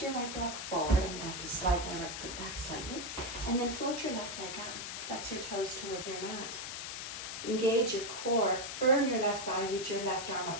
right block forward. I'm going to have to slide my right foot back slightly. And then float your left leg up. Flex your toes towards your mat. Engage your core, firm your left thigh, reach your left arm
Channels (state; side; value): noise; left; hiss, 6 dB below the sound